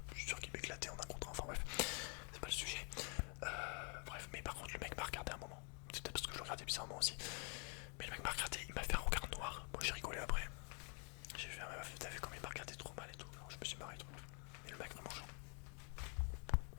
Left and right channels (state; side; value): quieter; right; 38.0 dB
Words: Je suis sûr qu'il m'éclatait en un contre un. Enfin bref, c'est pas le sujet. Bref, mais par contre le mec m'a regardé un moment. C'est peut-être parce que je le regardais bizarrement aussi. Mais le mec m'a regardé, il m'a fait un regard noir. Moi j'ai rigolé après. J'ai fait un meuf, t'as vu comme il m'a regardé trop mal et tout. Alors, je me suis marré trop. Et le mec vraiment genre.